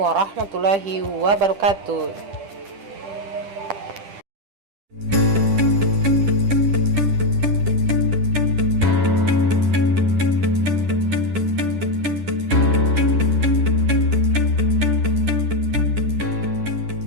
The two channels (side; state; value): left; late; 10 ms